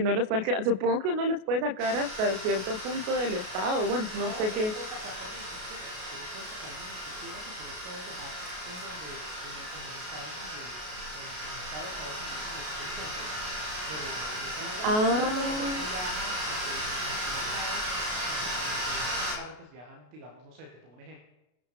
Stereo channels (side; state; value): left; late; 33 ms